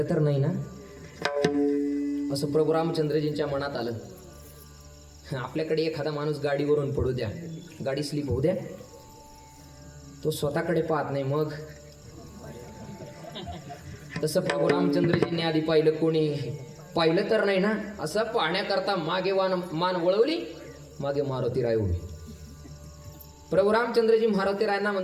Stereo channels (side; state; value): both; identical; correlation 1.00